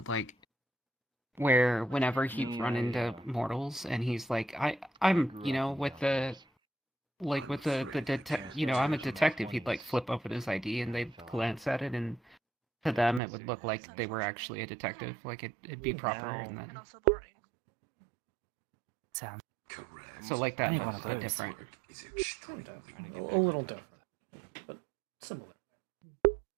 like where whenever he'd run into mortals, and he's like, I'm with the I'm a detective. He'd like flip open his ID, and they'd glance at it, and to them it would look like they were actually a detective. Like it'd be proper, and then Sounds so like that, Any one of but those. different. Kind of. A little different, but similar.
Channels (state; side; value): drops out; left; at 13.2 s